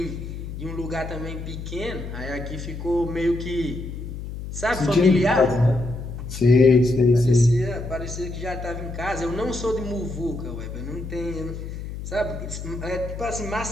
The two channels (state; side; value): noise; left; hum, 8 dB below the sound